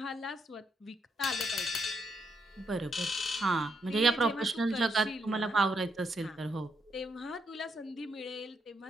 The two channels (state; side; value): normal; both; correlation 0.77